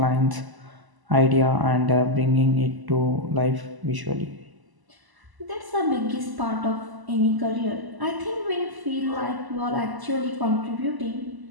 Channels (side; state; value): left; late; 1.0 ms